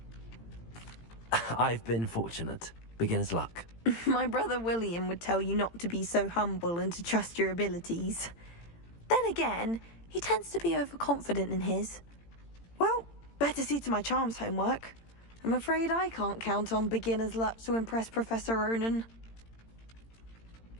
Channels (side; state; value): right; late; 18 ms